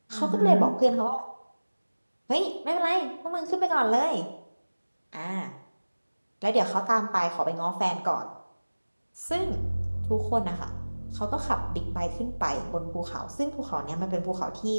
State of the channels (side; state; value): both; inverted; correlation -1.00